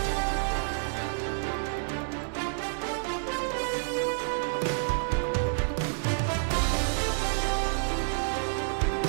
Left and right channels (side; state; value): left; silent; digital silence